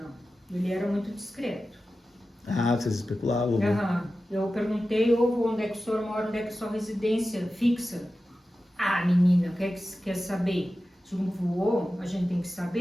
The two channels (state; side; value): normal; both; correlation 0.94